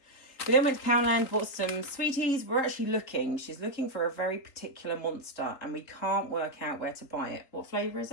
We then went to Poundland, bought some sweeties. We're actually looking. She's looking for a very particular monster and we can't work out where to buy it. What flavour is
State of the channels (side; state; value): right; late; 3.7 ms